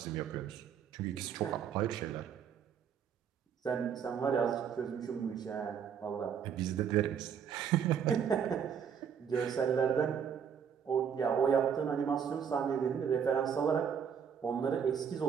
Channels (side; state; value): left; quieter; 7.6 dB